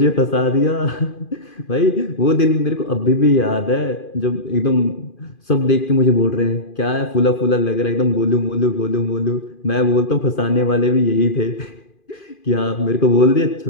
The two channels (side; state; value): right; late; 2.5 ms